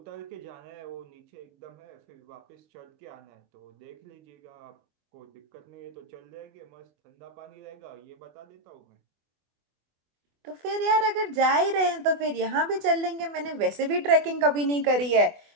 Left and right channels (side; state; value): left; late; 24 ms